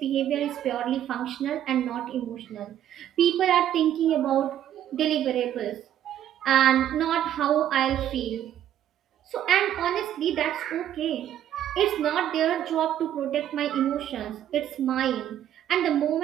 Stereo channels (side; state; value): left; quieter; 11.1 dB